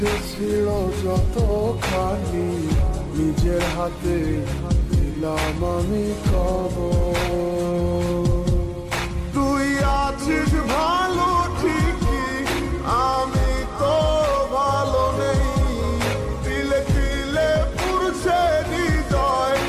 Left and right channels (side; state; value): both; identical; correlation 1.00